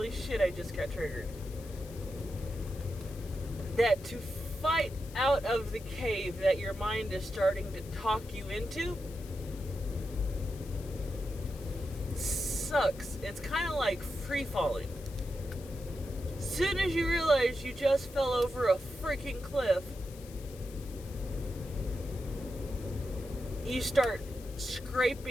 shit, I just got triggered. That to fight out of the cave that your mind is starting to talk you into sucks. It's kind of like free falling. Soon as you realize you just fell over a freaking cliff, you start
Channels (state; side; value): noise; left; hiss, 19 dB below the sound